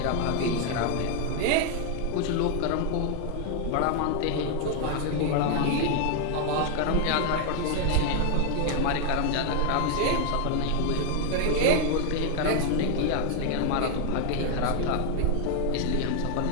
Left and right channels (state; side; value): different; both; correlation 0.00